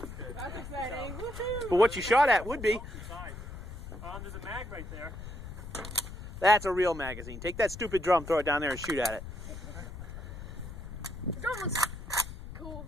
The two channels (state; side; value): noise; left; rumble, 10 dB below the sound